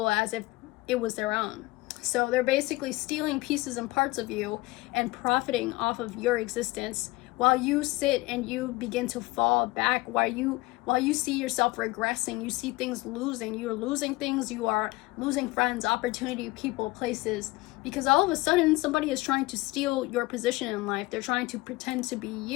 as if it was their own. So they're basically stealing pieces and parts of you and profiting off of your existence while you sit and you begin to fall back, while you see yourself regressing, you see things losing, you're losing things, you are losing friends, opportunity, people, places, because all of a sudden somebody is trying to steal your position in life. They're trying to pretend to be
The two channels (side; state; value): right; quieter; 21.1 dB